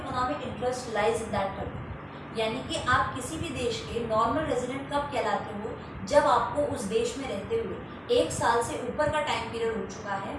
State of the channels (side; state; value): both; identical; correlation 1.00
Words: interest lies in that country. यानी कि आप किसी भी देश के normal resident कब कहलाते हो, जब आपको उस देश में रहते हुए 1 साल से ऊपर का टाइम पीरियड हो चुका है